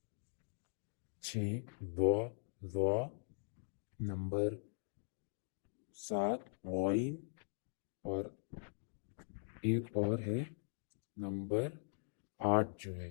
6 ضا ضا، نمبر 7 غائن، اور ایک اور ہے نمبر 8 جو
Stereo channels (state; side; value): silent; right; digital silence